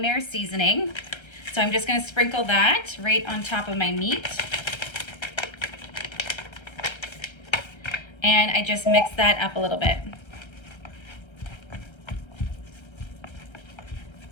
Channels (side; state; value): right; late; 1.3 ms